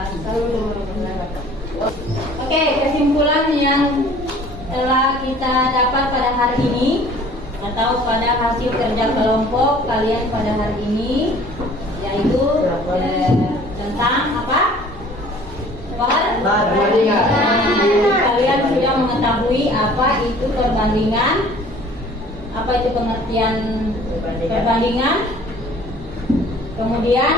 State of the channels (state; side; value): normal; both; correlation 0.51